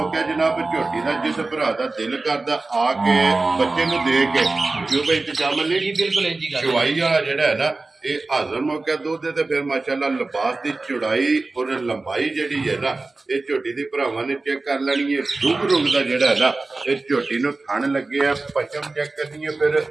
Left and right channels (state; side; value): quieter; left; 3.4 dB